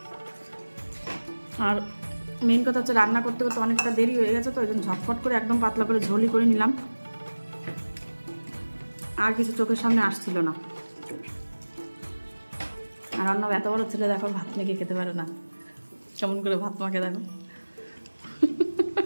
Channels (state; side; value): inverted; both; correlation -1.00